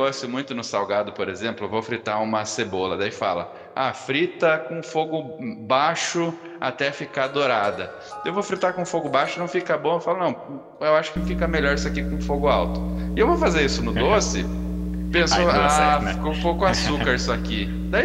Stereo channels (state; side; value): identical; both; correlation 1.00